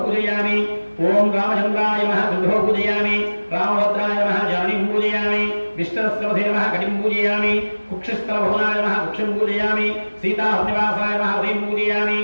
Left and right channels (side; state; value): both; inverted; correlation -1.00